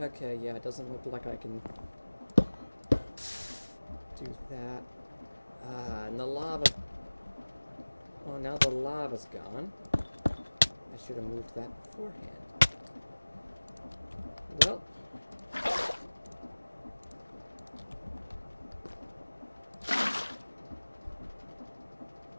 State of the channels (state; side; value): inverted; both; correlation -1.00